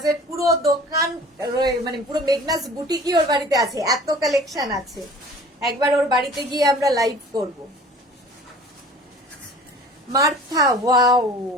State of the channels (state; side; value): normal; both; correlation 0.45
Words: পুরো দোকান, মানে পুরো মেঘনাজ বুটিকই ওর বাড়িতে আছে, এত কালেকশন আছে। একবার ওর বাড়িতে গিয়ে আমরা লাইভ করব। মার্থা, ওয়াও,